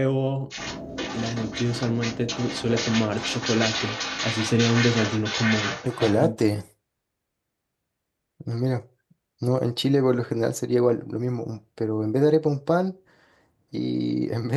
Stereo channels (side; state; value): both; identical; correlation 1.00